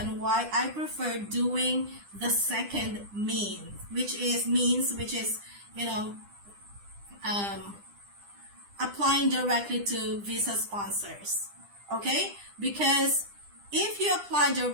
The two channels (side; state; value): left; late; 10 ms